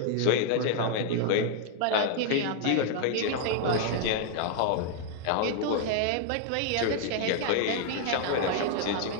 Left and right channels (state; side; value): different; both; correlation 0.00